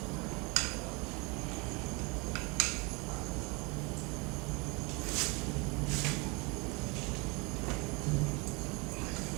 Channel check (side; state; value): left; quieter; 28.5 dB